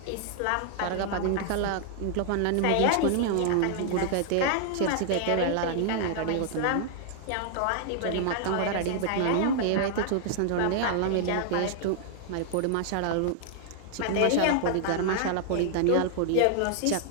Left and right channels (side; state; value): both; different; correlation 0.00